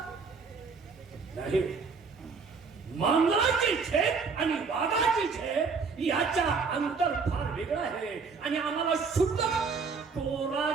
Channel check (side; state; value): left; quieter; 5.0 dB